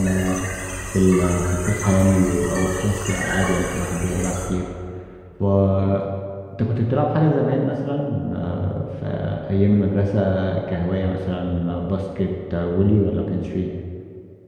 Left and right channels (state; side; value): identical; both; correlation 1.00